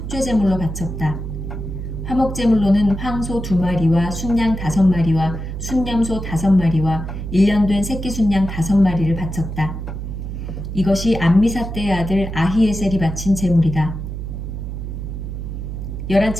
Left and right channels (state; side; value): noise; right; hum, 6 dB below the sound